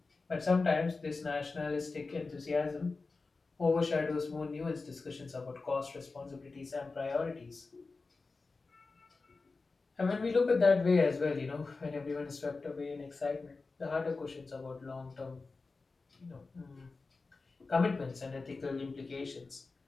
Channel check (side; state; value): right; quieter; 3.9 dB